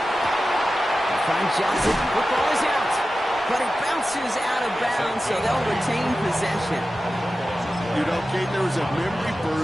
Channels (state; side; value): normal; both; correlation 0.94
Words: Find Johnson. Football is out. But it bounces out of bounds, so they'll retain possession. You know, Kate, there was a memory